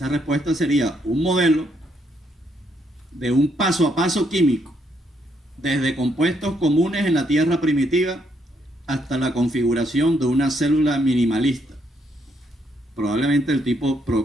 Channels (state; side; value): normal; both; correlation 0.74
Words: respuesta sería un modelo de un paso a paso químico, desde compuestos comunes en la Tierra primitiva hasta la configuración de una célula minimalista, probablemente del tipo